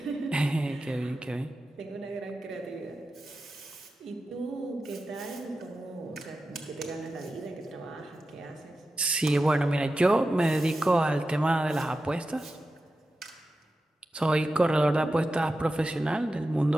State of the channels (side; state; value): both; normal; correlation 0.92